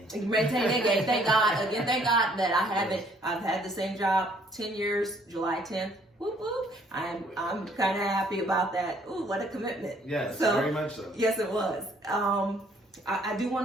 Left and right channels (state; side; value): normal; both; correlation 0.63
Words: Maintain and gain. Thank God. Again, thank God that I've had the same job 10 years, July 10th. Whoop, whoop. I'm kind of happy about that. Ooh, what a commitment. Yes, very much so. Yes, it was. I do